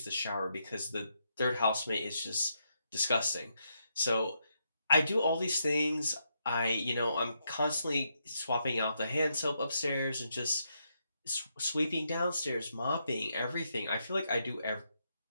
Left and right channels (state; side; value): inverted; both; correlation -0.80